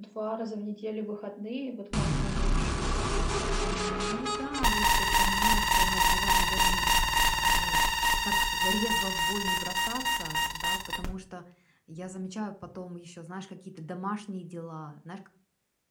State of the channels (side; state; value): both; identical; correlation 1.00